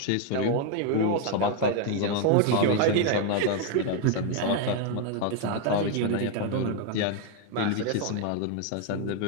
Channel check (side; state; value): both; different; correlation 0.01